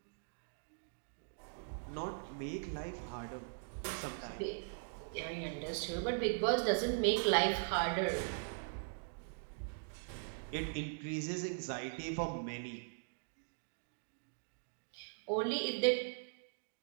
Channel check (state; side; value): silent; left; digital silence